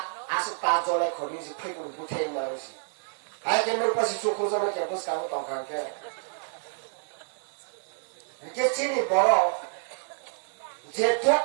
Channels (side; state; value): left; silent; 59 dB below the other